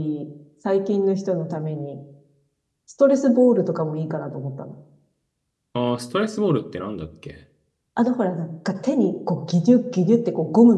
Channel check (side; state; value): both; identical; correlation 1.00